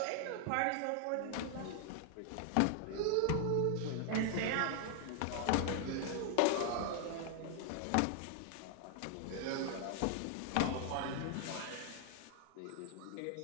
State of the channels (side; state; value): both; different; correlation 0.00